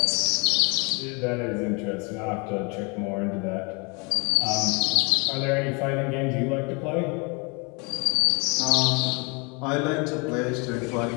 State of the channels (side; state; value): right; quieter; 31.0 dB